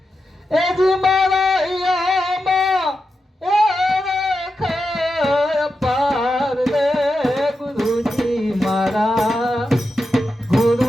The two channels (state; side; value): normal; both; correlation 0.89